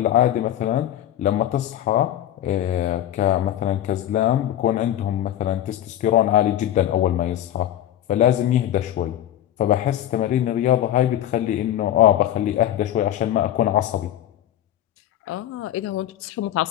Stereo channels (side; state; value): right; quieter; 11.9 dB